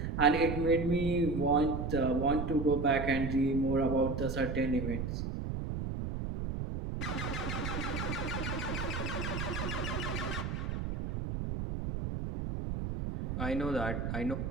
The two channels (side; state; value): right; noise; rumble, 3 dB below the sound